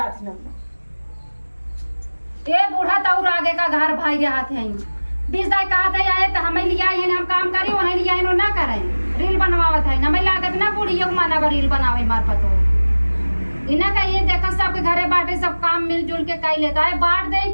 ना ए बूढ़ा तौर आगे का घर भाई रहा थे 20 दाई कहा था आए तो हमें लिया है हम काम करी उन्हें लिया है ना करें रील बनवावत है हमें लागत ना बुढ़ी माना रील बनावे मार पतो इना का ये देखा सबके घरे बाटे सब काम मिलजुल के कई लेता है बांट दे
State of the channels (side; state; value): both; inverted; correlation -1.00